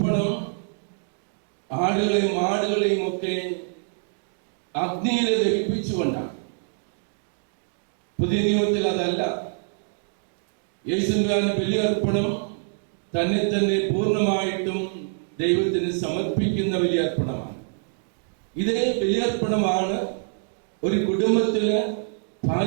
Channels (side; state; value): left; silent; digital silence